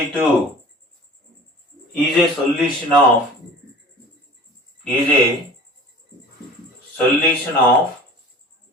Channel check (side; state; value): both; normal; correlation 0.43